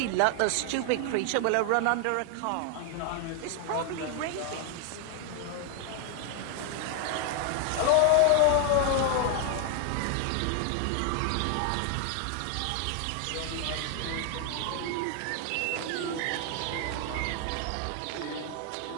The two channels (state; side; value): different; both; correlation 0.00